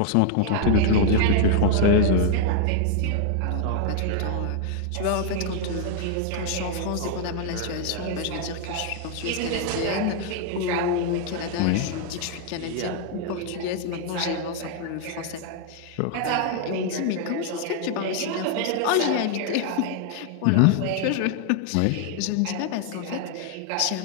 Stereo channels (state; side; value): different; both; correlation 0.00